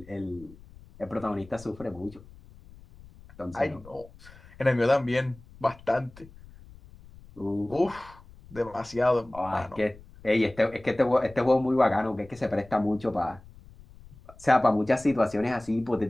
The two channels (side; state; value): left; noise; rumble, 22 dB below the sound